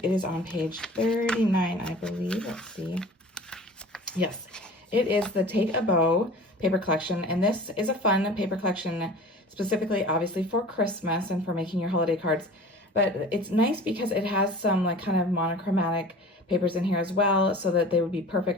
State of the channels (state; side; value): normal; both; correlation 0.41